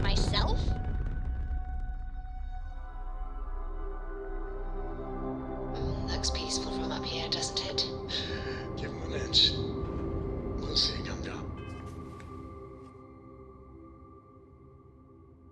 Looks peaceful from up here, doesn't it? Give him an inch. We'll see. Come down.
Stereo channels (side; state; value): both; identical; correlation 1.00